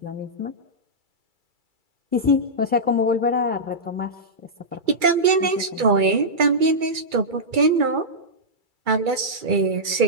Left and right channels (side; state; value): left; late; 2.3 ms